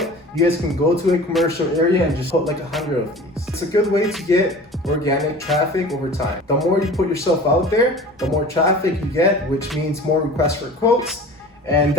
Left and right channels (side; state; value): both; normal; correlation 0.41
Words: You guys can go to a commercial area and just put like 100 of these. It's a good way to get organic traffic over time. The more you put yourself out there, the more traffic you get, which means more requests for quotes, and